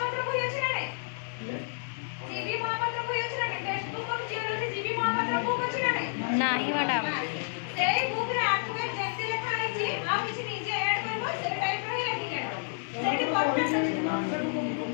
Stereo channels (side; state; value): right; silent; 58 dB below the other